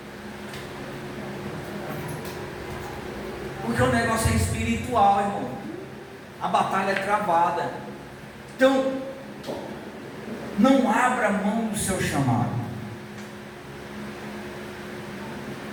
Porque o negócio é espiritual, irmão. A batalha é travada. Então, não abra mão do seu chamado.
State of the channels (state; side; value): identical; both; correlation 1.00